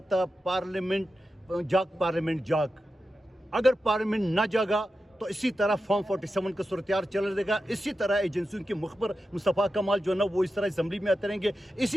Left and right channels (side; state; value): both; normal; correlation 0.91